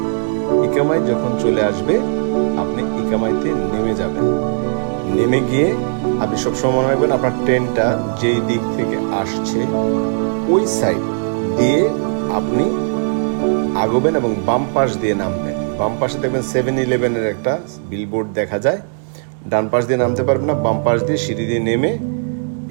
ইকামাই যখন চলে আসবে আপনি ইকামাইতে নেমে যাবেন। নেমে গিয়ে আপনি সবসময় মনে রাখবেন আপনার ট্রেনটা যেই দিক থেকে আসছে ওই সাইড দিয়ে আপনি আগবেন এবং বাম পাশ দিয়ে নামবেন। বাম পাশে দেখবেন 7-Eleven-এর একটা বিলবোর্ড দেখা যায়। ডান পাশ দিয়ে নামতে পারবেন না, বাম পাশ দিয়ে সিঁড়ি দিয়ে নেমে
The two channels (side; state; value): left; silent; 65 dB below the other